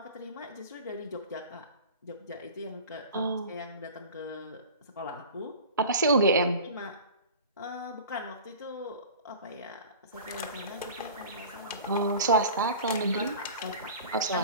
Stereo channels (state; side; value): inverted; both; correlation -0.38